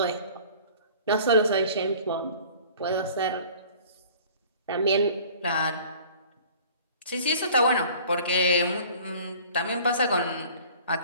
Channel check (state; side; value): inverted; both; correlation -0.48